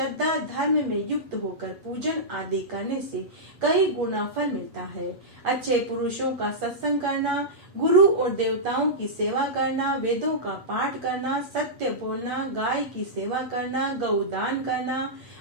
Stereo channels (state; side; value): late; left; 8.4 ms